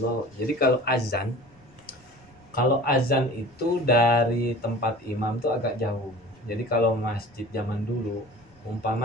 Jadi kalau azan itu dari tempat imam tuh agak jauh. Jadi kalau masjid zaman dulu,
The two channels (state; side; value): noise; left; rumble, 29 dB below the sound